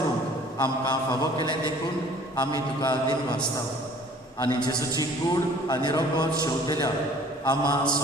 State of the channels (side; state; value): both; normal; correlation 0.52